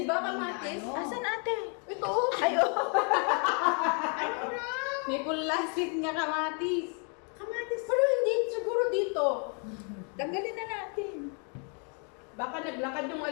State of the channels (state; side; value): quieter; right; 38.7 dB